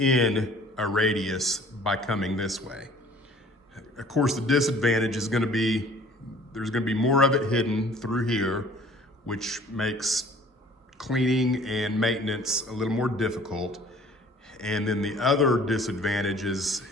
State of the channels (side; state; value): both; normal; correlation 0.52